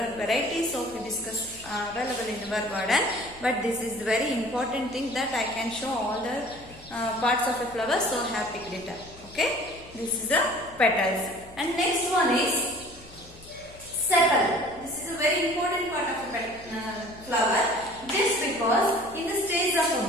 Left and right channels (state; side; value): noise; left; hum, 22 dB below the sound